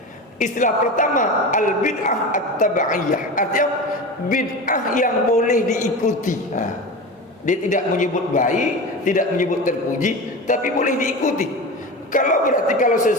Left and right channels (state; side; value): normal; both; correlation 0.27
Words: Istilah pertama al-bid'ah at-tab'iyah, artinya bid'ah yang boleh diikuti. Dia tidak menyebut baik, tidak menyebut terpuji, tapi boleh diikuti. Kalau